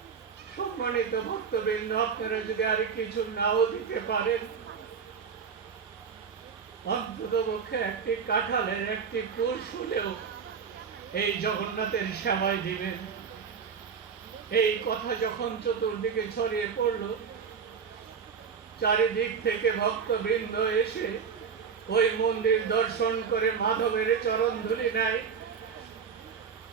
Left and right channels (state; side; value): quieter; left; 6.4 dB